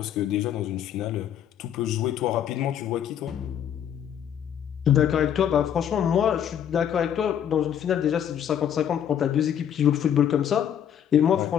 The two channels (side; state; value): right; quieter; 9.4 dB